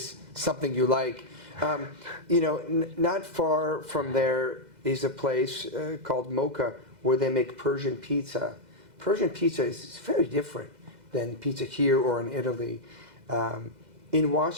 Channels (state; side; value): late; left; 2.0 ms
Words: something you like. Not far from there is a place called Mocha where they make Persian pizza. Persian pizza is very different than pizza here or in Italy. In